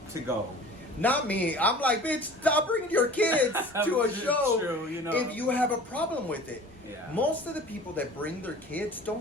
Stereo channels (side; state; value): both; normal; correlation 0.43